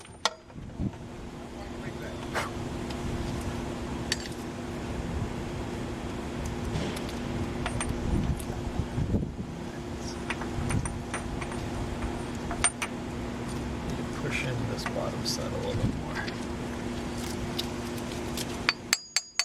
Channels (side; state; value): both; identical; correlation 1.00